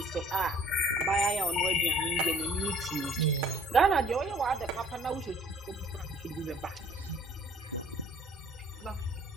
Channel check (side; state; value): both; normal; correlation 0.56